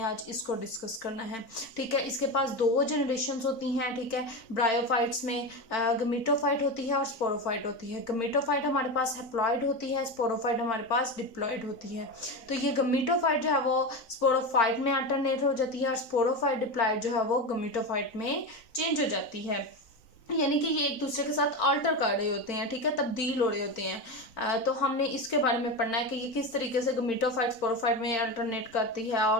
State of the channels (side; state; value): right; late; 3.9 ms